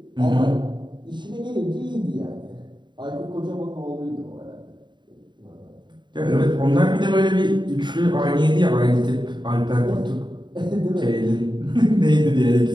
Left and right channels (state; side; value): late; left; 0.22 ms